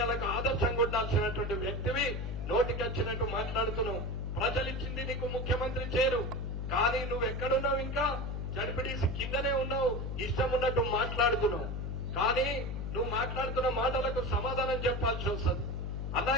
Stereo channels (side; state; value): left; noise; hum, 3 dB below the sound